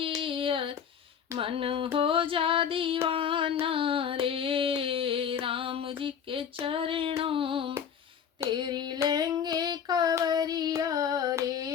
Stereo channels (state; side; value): quieter; right; 7.8 dB